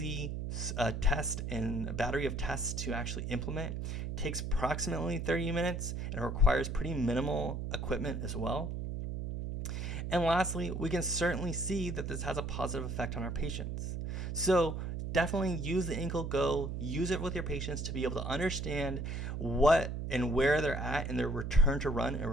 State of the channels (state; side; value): noise; right; hum, 4 dB below the sound